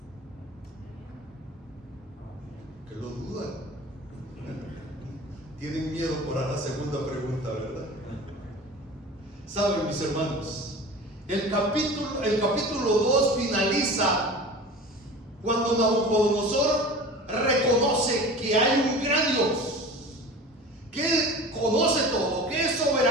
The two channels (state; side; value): normal; both; correlation 0.37